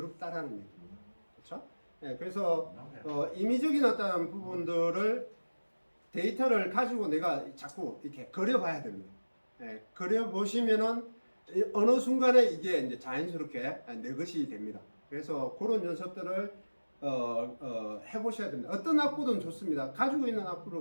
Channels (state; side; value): inverted; both; correlation -1.00